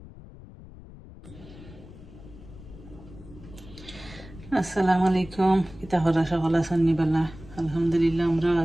আসসালামু আলাইকুম। কিতা হরা সকল আছেন বালা? আলহামদুলিল্লাহ আমরাও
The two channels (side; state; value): left; noise; rumble, 18 dB below the sound